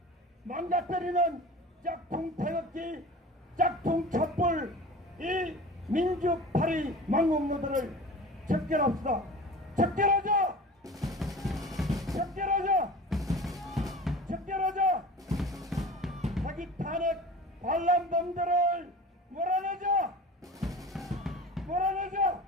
망가뜨리는 짝퉁 태극기, 짝퉁 촛불 이 민주파리 망국노들을 척결합시다. 척결하자! 척결하자! 척결하자! 사기 탄핵 반란범들을 몰아내자! 몰아내자!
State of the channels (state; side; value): normal; both; correlation 0.37